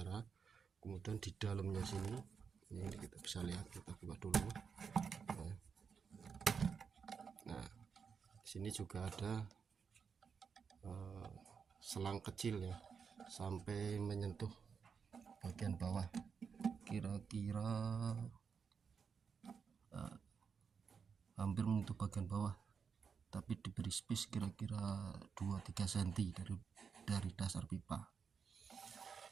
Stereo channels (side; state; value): left; quieter; 6.2 dB